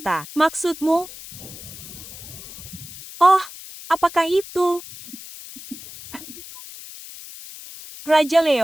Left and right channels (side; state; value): left; noise; hiss, 15 dB below the sound